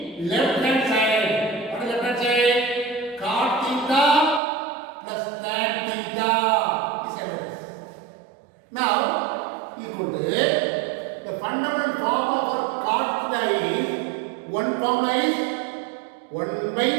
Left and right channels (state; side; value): drops out; left; at 4.4 s